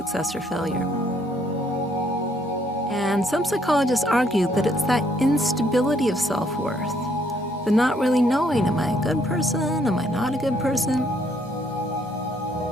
or failure. And some psychologists argue that it's that instability of self-worth, the not really knowing, am I a good person, am I not a good person?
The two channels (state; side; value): normal; both; correlation 0.69